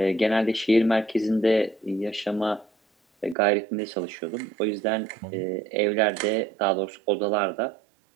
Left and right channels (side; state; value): left; drops out; at 3.4 s